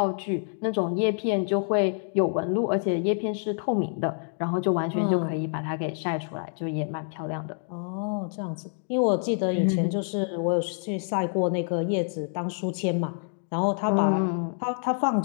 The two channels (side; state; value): right; silent; 60 dB below the other